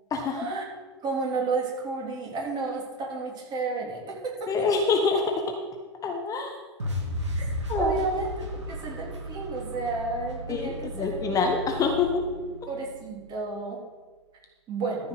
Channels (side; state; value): both; normal; correlation 0.19